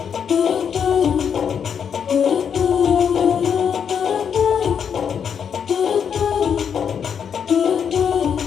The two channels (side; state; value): right; quieter; 7.4 dB